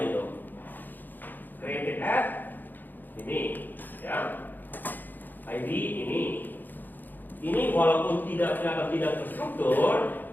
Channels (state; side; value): late; right; 0.088 ms